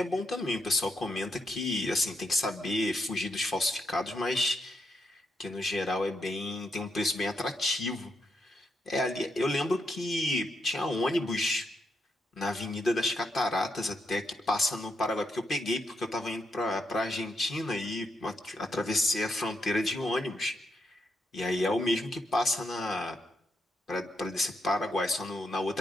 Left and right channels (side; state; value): both; normal; correlation 0.80